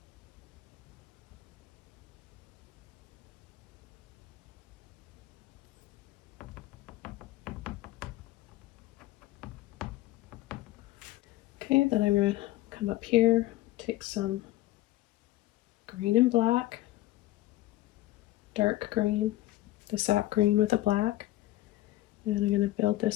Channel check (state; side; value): quieter; right; 16.4 dB